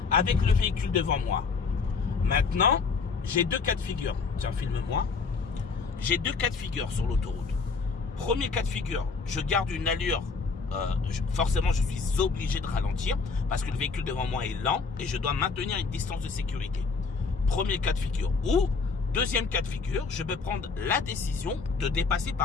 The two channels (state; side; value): quieter; right; 4.8 dB